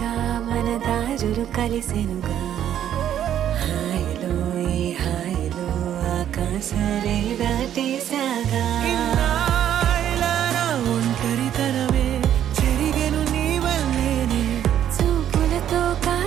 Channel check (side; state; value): left; quieter; 10.5 dB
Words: మన దారులు కలిసెనుగా హాయిలో ఈ హాయిలో ఆకాశాలే దాటేసాగా ఇన్నాళ్ళ నా ఒంటరితనమే చెరిగెను నీ వల్లేనే చూపులతో